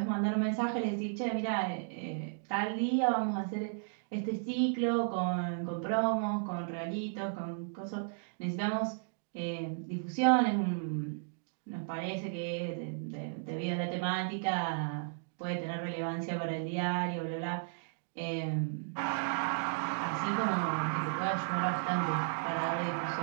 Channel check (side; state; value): left; silent; digital silence